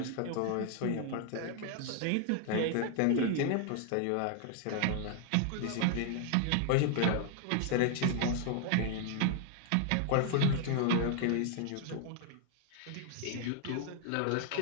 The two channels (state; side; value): different; both; correlation 0.00